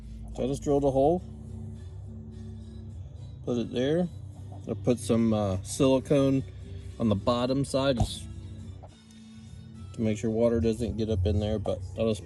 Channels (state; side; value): identical; both; correlation 1.00